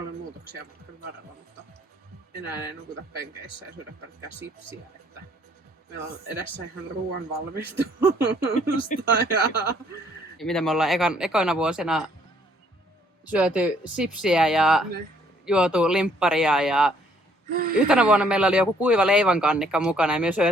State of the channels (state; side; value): normal; both; correlation 0.64